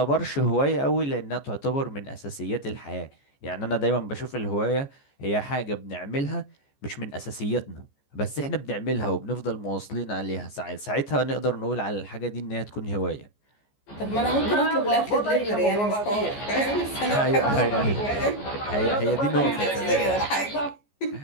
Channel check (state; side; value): late; right; 14 ms